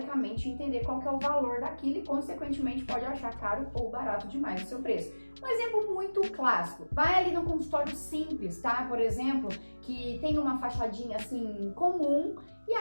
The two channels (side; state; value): both; inverted; correlation -1.00